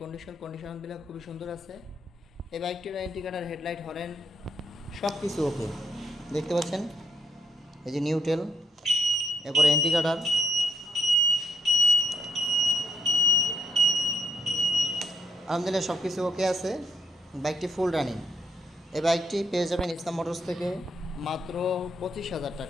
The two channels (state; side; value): normal; both; correlation 0.72